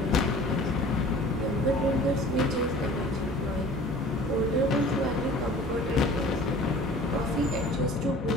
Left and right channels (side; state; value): both; normal; correlation 0.46